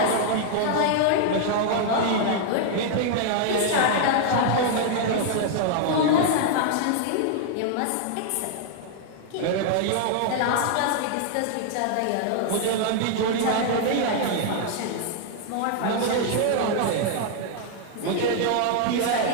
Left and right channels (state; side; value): different; both; correlation 0.00